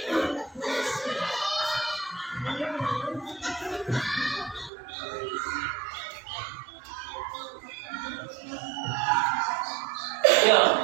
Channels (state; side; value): drops out; left; at 4.7 s